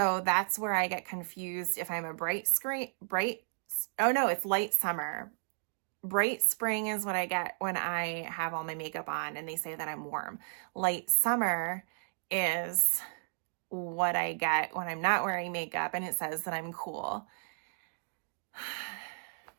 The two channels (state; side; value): silent; left; digital silence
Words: that's where I get confused if I'm a it's light summer. Bright spring is what I get when I have all my makeup on and they say that I'm warm. Light summer is what I get when I'm not wearing makeup and it says that I'm cool.